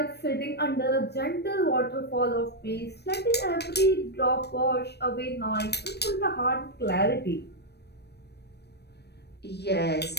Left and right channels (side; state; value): right; late; 0.48 ms